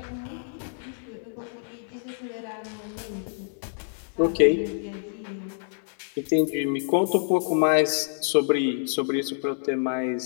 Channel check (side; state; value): right; silent; digital silence